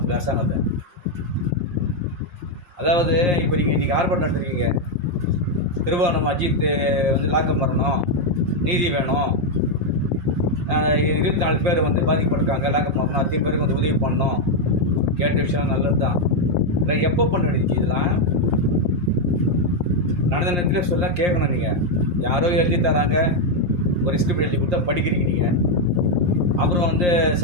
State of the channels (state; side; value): late; left; 5.7 ms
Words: அரசாங்கத்தை. அதாவது இப்போ நீங்கள் இன்றைக்கி ஆர்ப்பாட்டம் நடத்துருக்கீங்க, திருவாரூர் அஜித் வந்து லாக்கம் வரணும், நீதி வேணும், 24 பேர் வந்து பாதிக்கப்பட்டிருக்காங்க, லாக்கம் வரணும், அத்தனை பேருக்கு வந்து உதவி பண்ணணும். கேட்ட விஷயம் நல்லது தான். இல்லை எப்போ பண்ண வேண்டியது இதெல்லாம்? நடந்த நேரத்தில் சொல்ல கேட்கணும். நீங்கள் யாரோ எழுதி தராங்க, ஒரு ஸ்கிரிப்ட் எழுதி கொடுத்தா படிக்கிறீங்க நீங்கள். அப்புறம் வந்து